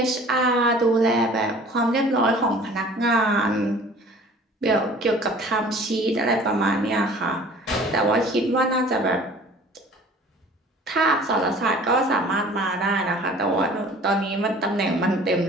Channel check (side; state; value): both; normal; correlation 0.47